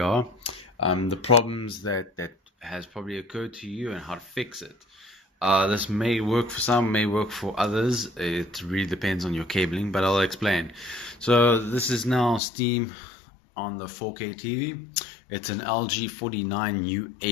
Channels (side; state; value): right; drops out; at 12.4 s